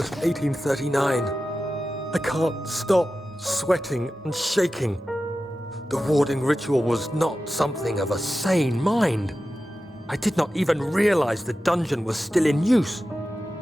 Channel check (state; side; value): normal; both; correlation 0.93